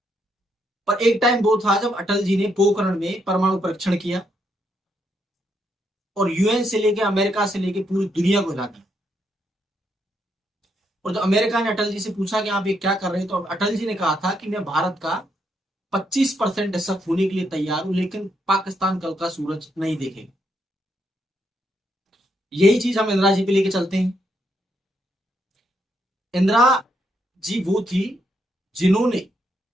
पर एक टाइम वो था जब अटल जी ने पोखरण में परमाणु परीक्षण किया और यूएन से लेके अमेरिका से लेके पूरी दुनिया को हिला दिया। और जब अमेरिका ने अटल जी से पूछा कि आप ये क्या कर रहे हैं, तो अटल जी ने कहा था कि मैं भारत का 25% हिस्सा खोने के लिए तैयार हूं, लेकिन पाकिस्तान कल का सूरज नहीं देखेगा। यही चीज हम इंदिरा जी पे लेके चलते हैं। इंदिरा जी वो थी जिन्होंने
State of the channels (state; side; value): normal; both; correlation 0.77